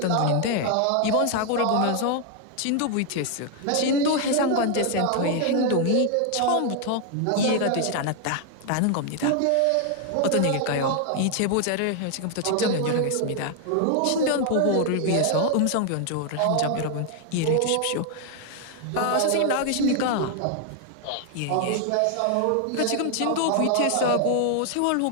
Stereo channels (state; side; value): different; both; correlation 0.00